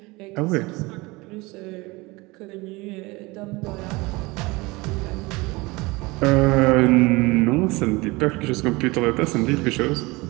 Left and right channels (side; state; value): left; quieter; 23.4 dB